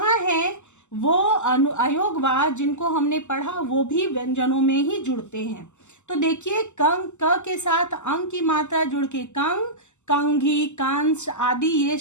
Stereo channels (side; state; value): right; late; 0.84 ms